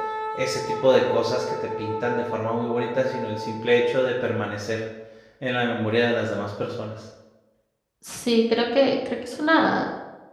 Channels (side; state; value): both; identical; correlation 1.00